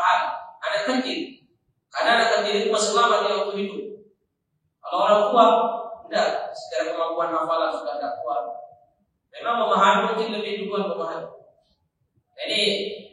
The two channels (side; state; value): both; identical; correlation 1.00